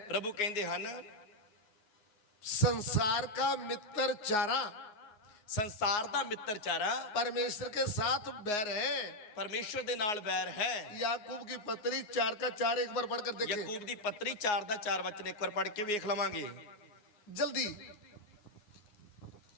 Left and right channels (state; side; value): late; right; 9.6 ms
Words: ਪ੍ਰਭੂ ਕਹਿੰਦੇ ਹਨ संसार का मित्र चारा ਸੰਸਾਰ ਦਾ ਮਿੱਤਰ ਚਾਰਾ परमेश्वर के साथ बैर है। ਪਰਮੇਸ਼ਵਰ ਦੇ ਨਾਲ ਵੈਰ ਹੈ। याकूब की पत्री 4 का 4 एक बार पढ़कर देखें ਯਾਕੂਬ ਦੀ ਪੱਤਰੀ 4 ਦਾ 4 ਵਚਨ ਇੱਕ ਵਾਰ ਪੜ੍ਹ ਕੇ ਵੇਖ ਲਵਾਂਗੇ। जल्दी।